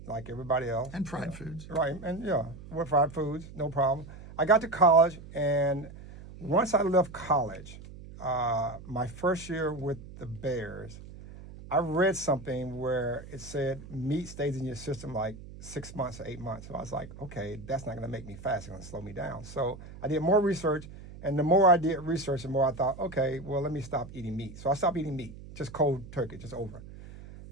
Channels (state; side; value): noise; right; hum, 15 dB below the sound